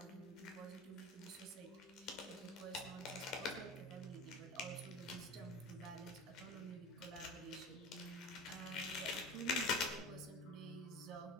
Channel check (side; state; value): both; normal; correlation 0.33